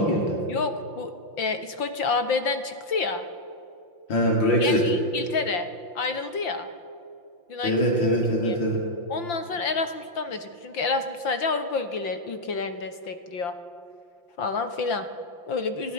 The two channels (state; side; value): late; right; 5.8 ms